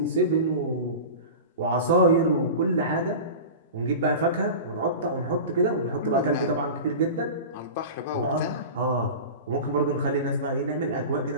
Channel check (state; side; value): inverted; both; correlation -0.30